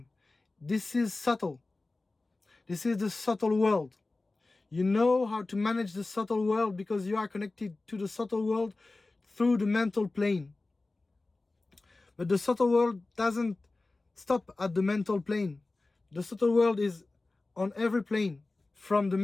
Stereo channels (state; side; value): quieter; right; 3.2 dB